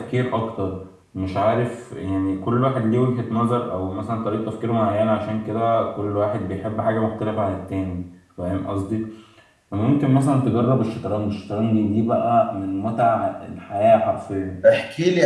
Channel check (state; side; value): identical; both; correlation 1.00